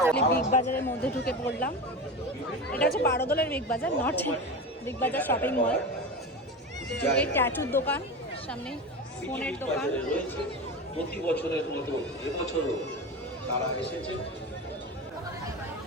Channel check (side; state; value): both; normal; correlation 0.25